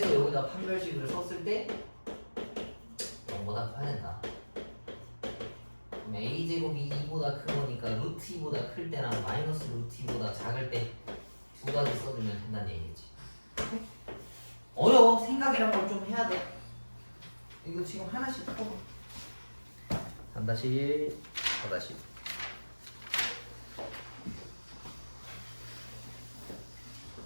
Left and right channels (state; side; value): inverted; both; correlation -1.00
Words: 여기다 판별식을 썼을 때 0보다 커야 된다. 그럼 a제곱이 2보다 큰 거니까 루트 2보다 클 때랑 마이너스 루트 2보다 작을 때 두 가지 써주면 된다는 얘기지. 어려워. 생각이란 걸 좀 해야 돼. 이거 지금 하나씩 풀어. 3-1, 4-1.